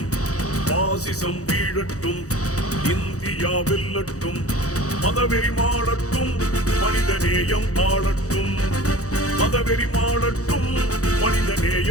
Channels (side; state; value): right; late; 0.65 ms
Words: பாசிசம் வீழட்டும், இந்தியா வெல்லட்டும். மதவெறி மாளட்டும், மனிதநேயம் ஆளட்டும். மதவெறி மாளட்டும்,